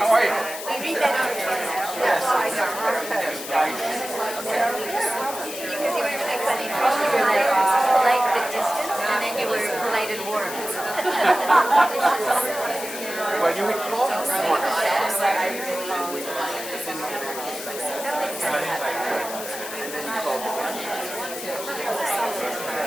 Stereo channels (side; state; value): left; noise; hiss, 9 dB below the sound